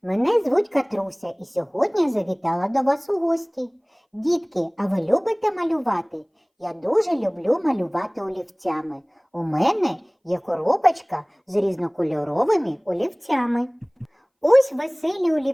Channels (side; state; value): both; identical; correlation 1.00